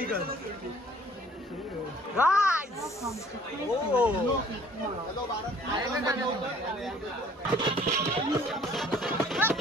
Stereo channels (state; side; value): normal; both; correlation 0.56